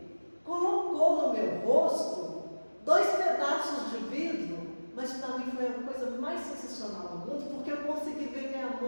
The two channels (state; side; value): inverted; both; correlation -1.00